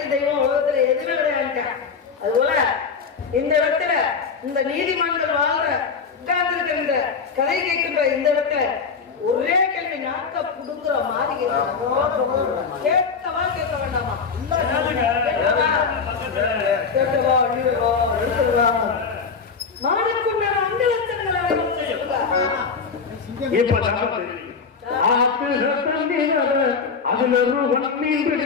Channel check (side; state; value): right; quieter; 5.5 dB